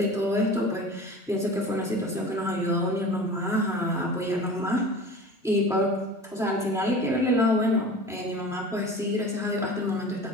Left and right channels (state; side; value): normal; both; correlation 0.38